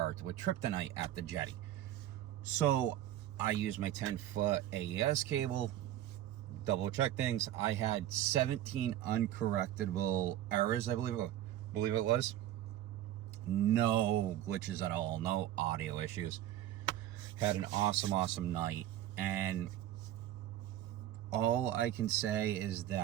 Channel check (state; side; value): quieter; left; 12.9 dB